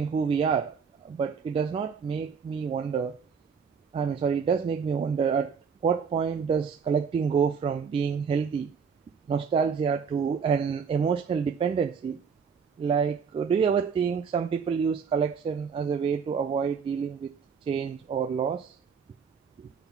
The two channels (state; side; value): quieter; left; 6.2 dB